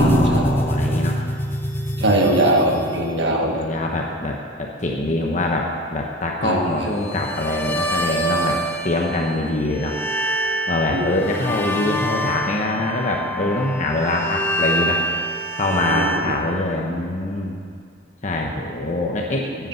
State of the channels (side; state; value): both; normal; correlation 0.34